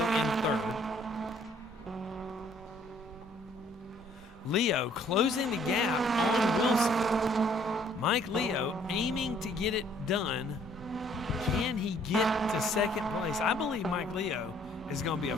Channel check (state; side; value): normal; both; correlation 0.61